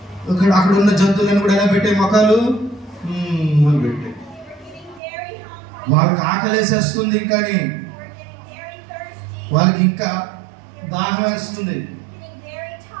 అక్కడ ఉన్న జంతువులను కూడా ఎలా పెట్టే మొక్కలు పెట్టే. వాళ్ళకి ఆకలేసేస్తుంది, కానీ వాళ్ళకి ఇంకా దాహం వేస్తుంది,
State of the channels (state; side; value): drops out; left; at 5.0 s